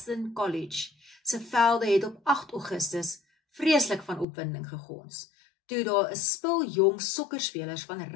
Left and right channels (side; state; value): right; drops out; at 4.2 s